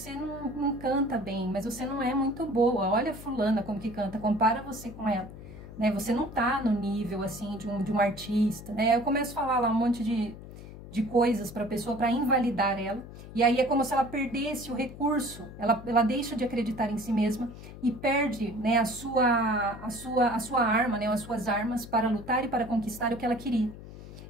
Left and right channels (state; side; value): noise; left; hum, 14 dB below the sound